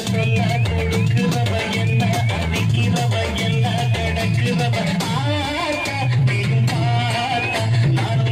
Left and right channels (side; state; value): both; identical; correlation 1.00